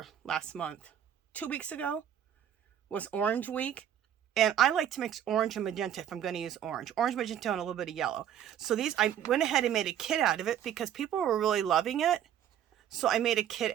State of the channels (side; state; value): left; quieter; 10.1 dB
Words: 2 weeks ago was Orange Week, and I like to mix orange and magenta if I'm going to use orange, magenta, and a little bit of yellow. So these, I went ahead and made a kit out of it because people were really loving it. So I made a